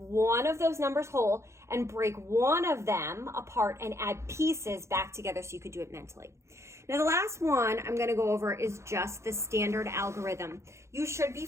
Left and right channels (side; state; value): left; late; 0.14 ms